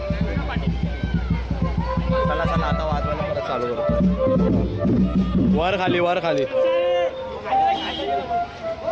चला चला आता वाजवायला परत चालू करू. वर खाली वर खाली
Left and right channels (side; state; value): both; identical; correlation 1.00